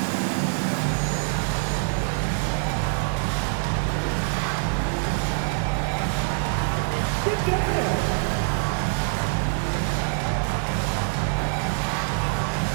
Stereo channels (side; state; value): left; silent; 62 dB below the other